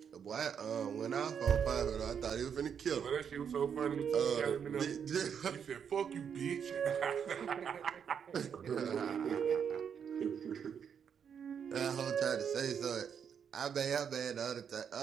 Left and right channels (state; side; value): quieter; left; 7.5 dB